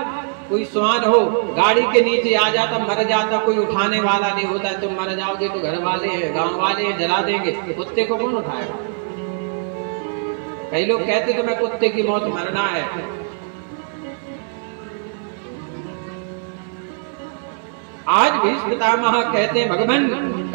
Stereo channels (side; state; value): left; silent; 64 dB below the other